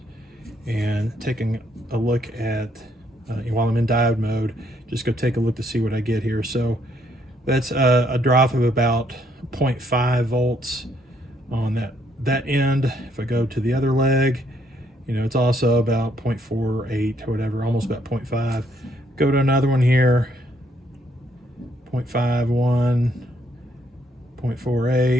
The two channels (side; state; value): both; normal; correlation 0.70